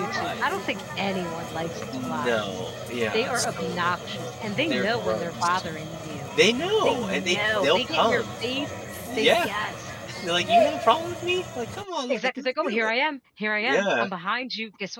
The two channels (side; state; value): both; identical; correlation 1.00